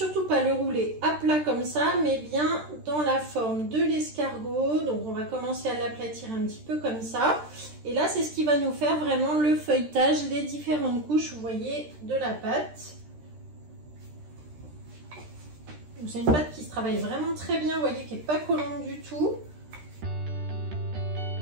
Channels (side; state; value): left; late; 13 ms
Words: pas le rouler à plat comme ça, mais bien dans la forme de l'escargot. Donc on va commencer à l'aplatir un petit peu comme ça. Et là c'est ce qui va nous faire vraiment le feuilletage, les différentes couches, vous voyez, de la pâte. C'est une pâte qui se travaille vraiment très bien, vous voyez, qui n'est pas collante du tout.